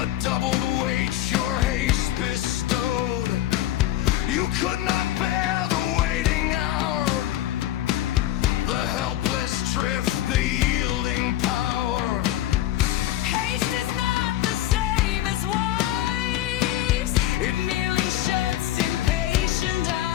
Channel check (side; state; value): right; quieter; 13.6 dB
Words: doubled weight your haste bestowed. You could not bear the waiting hour, the helpless drift, the yielding power. Haste is not the same as wives. It merely shuts impatient